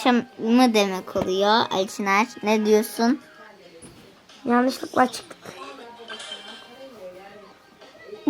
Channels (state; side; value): identical; both; correlation 1.00